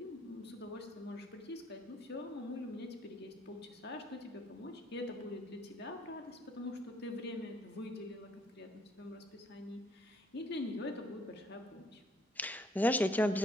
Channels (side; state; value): both; normal; correlation 0.66